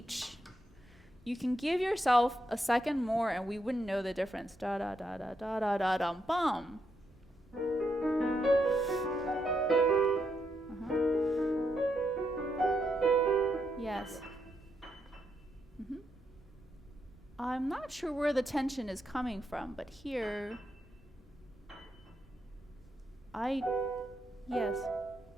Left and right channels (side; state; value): both; normal; correlation 0.80